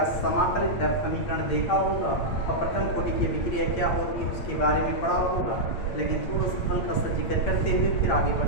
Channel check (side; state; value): right; late; 8.7 ms